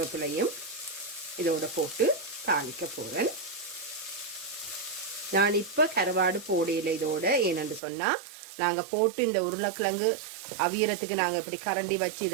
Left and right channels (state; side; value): drops out; left; at 7.8 s